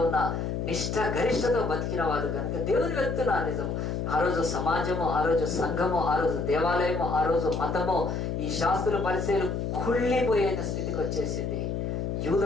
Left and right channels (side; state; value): left; noise; hum, 2 dB below the sound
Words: ఉన్న నిష్ఠ గరిష్టతో బతికిన వాళ్ళు కనుక దేవుని వెళ్తున్నారు. నిజము ఆ రోజు సమాజము, ఆ రోజు సంఘము, ఆ రోజు దేవాలయము, ఆ రోజు మతము, ఈ శాస్త్రుల పరిచయాలు కుళ్ళిపోయిన స్థితికి వచ్చేసింది.